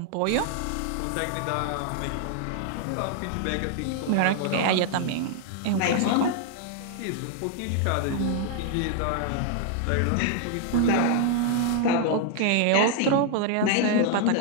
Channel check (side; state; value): both; different; correlation 0.00